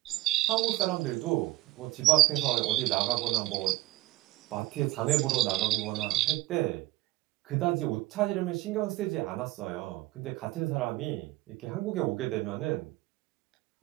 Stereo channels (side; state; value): left; quieter; 16.9 dB